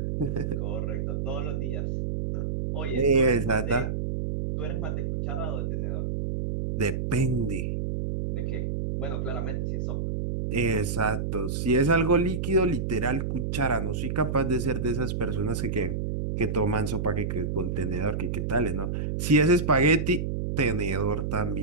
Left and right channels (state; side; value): noise; right; hum, 1 dB below the sound